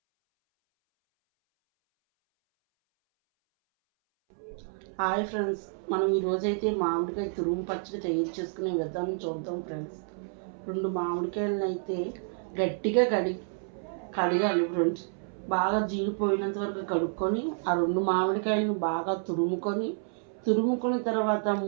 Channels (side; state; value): left; silent; 58 dB below the other